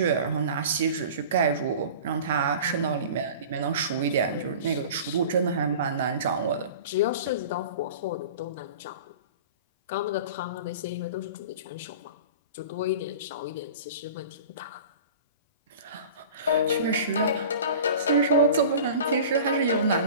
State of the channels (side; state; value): both; inverted; correlation -0.39